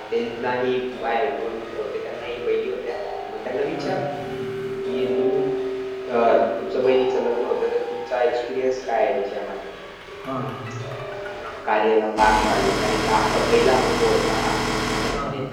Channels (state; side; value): identical; both; correlation 1.00